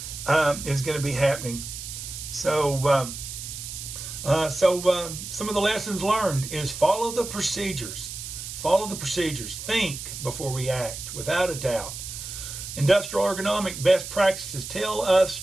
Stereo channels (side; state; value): right; noise; hiss, 9 dB below the sound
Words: is going to be happening. So some of the lessons learned is follow the procedures. Follow the procedures. Think before we act, without a doubt. Industrial ergonomic best practices tell us